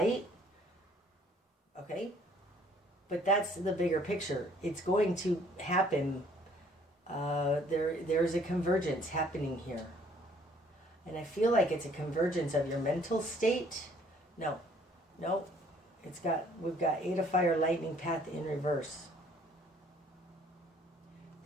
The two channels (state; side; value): normal; both; correlation 0.60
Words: Okay? But that's the bigger picture. It's going to happen. There's a convergence happening here. And I feel like it's a convergence of your mental state. No. We've got Eight of Fire, lightning path in reverse.